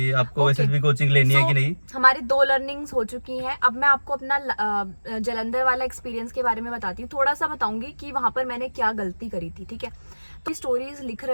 आपको Okay. एसएसबी कोचिंग लेनी है कि नहीं। हमारी 2 लर्निंग्स हो चुकी हैं। अब मैं आपको अपना जलंधर वाला एक्सपीरियंस के बारे में बताती हूँ, थोड़ा सा बताऊंगी कि वहां पर मैंने क्या गलती करी थी। ठीक है, तो स्टोरीज लिख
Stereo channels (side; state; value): both; inverted; correlation -1.00